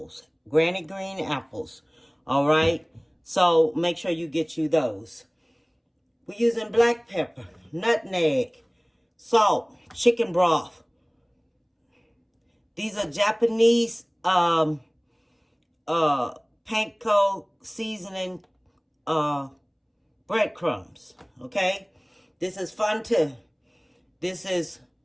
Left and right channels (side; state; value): both; identical; correlation 1.00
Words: Granny green apples. All right. So make sure you get you those. We're using black pepper, nutmeg, salt, chicken broth. These are Japanese panko seasoning breadcrumbs. Okay? This is Fonte. This is